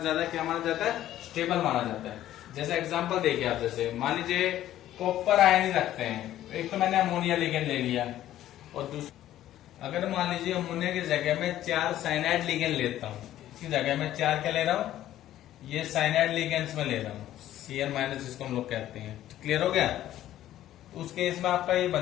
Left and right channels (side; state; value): right; quieter; 13.0 dB